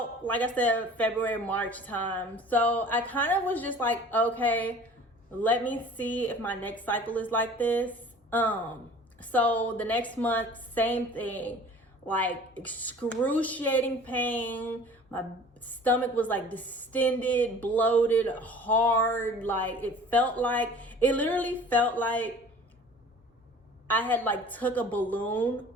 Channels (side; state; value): both; normal; correlation 0.46